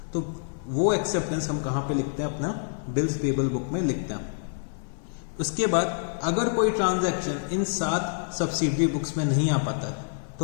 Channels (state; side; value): silent; right; 60 dB below the other